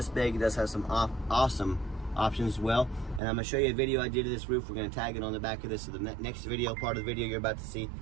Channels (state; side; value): drops out; left; at 3.2 s